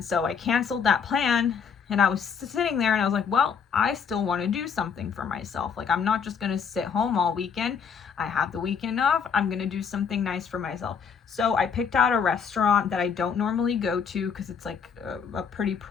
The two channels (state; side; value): quieter; right; 6.5 dB